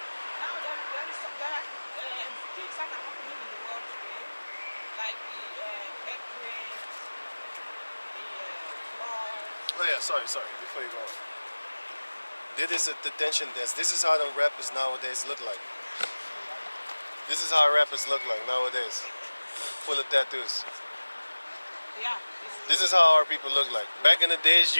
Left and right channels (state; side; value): inverted; both; correlation -1.00